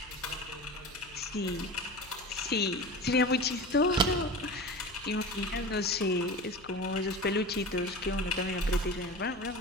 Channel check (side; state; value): left; noise; hum, 23 dB below the sound